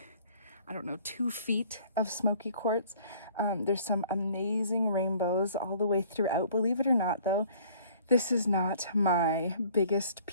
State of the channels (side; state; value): both; inverted; correlation -0.54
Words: I don't know, 2 feet of Smoky Quartz. There's some amazing rainbows all the way throughout. Believe it or not, though, this is not my biggest